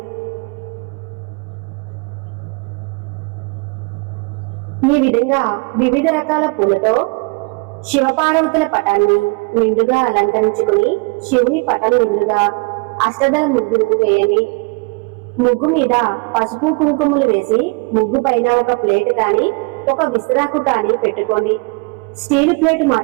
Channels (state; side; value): quieter; left; 30.2 dB